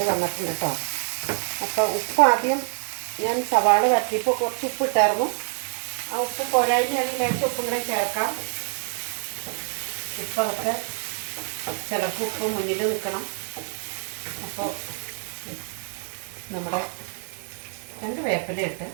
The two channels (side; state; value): left; silent; 61 dB below the other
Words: വന്നിട്ടുണ്ട് കേട്ടോ. അപ്പോൾ ഉപ്പ് ആദ്യം ഞാൻ സവാള വരട്ടിയപ്പോൾ കുറച്ച് ഉപ്പ് ഇട്ടായിരുന്നു. ആ ഉപ്പ് പോരായ്മയാണെങ്കിൽ ലേശം ഉപ്പും കൂടെ ചേർക്കാം. ഉപ്പൊക്കെ ചിലർക്ക് ഉപ്പ് മുന്നിൽ നിൽക്കണം. അപ്പോൾ നമ്മുടെ 2 വേപ്പില ഇട്ട്